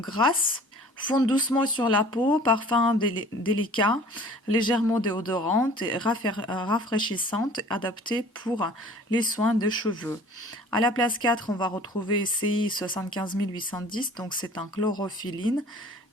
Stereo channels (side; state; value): both; normal; correlation 0.48